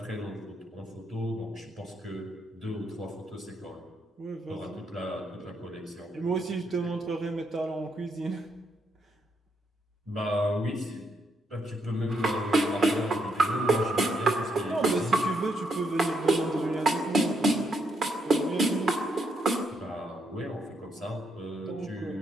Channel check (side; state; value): both; normal; correlation 0.77